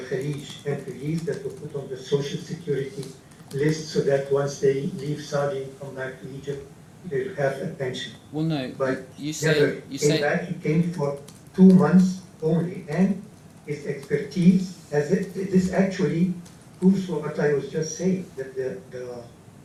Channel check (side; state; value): both; identical; correlation 1.00